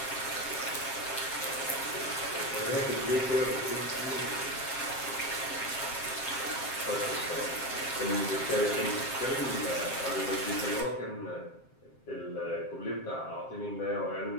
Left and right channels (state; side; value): late; right; 7.5 ms